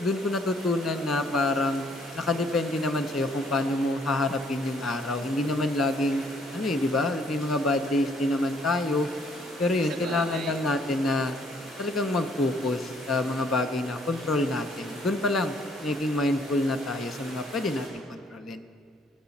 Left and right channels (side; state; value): both; normal; correlation 0.65